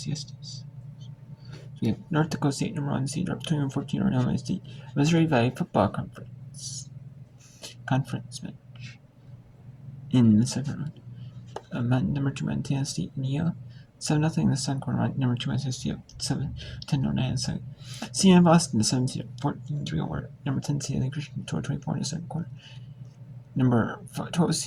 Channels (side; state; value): both; identical; correlation 1.00